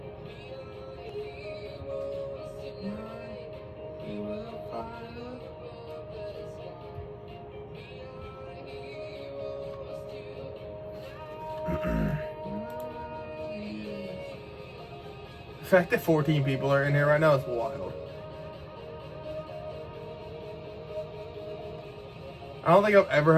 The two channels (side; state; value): both; identical; correlation 1.00